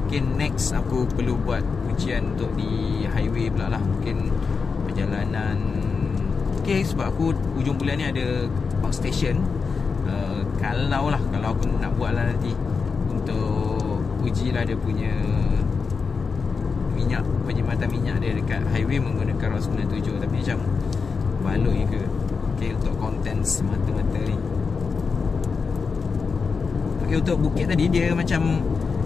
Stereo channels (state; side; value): quieter; right; 5.1 dB